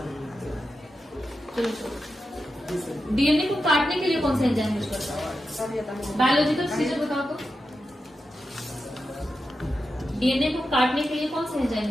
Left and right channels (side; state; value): both; normal; correlation 0.89